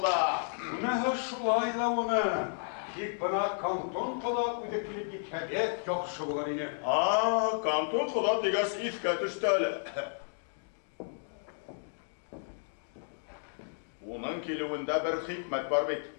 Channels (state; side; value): silent; right; digital silence